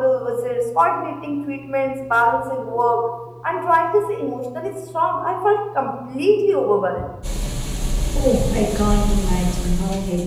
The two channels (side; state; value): both; identical; correlation 1.00